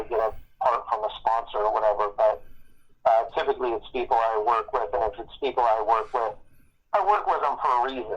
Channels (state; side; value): identical; both; correlation 1.00